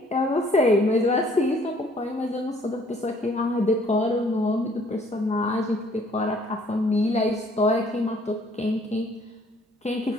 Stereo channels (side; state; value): both; normal; correlation 0.60